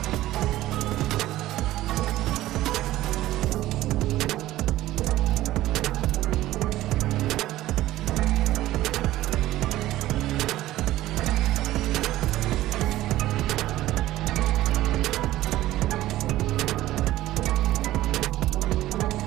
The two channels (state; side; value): quieter; left; 15.4 dB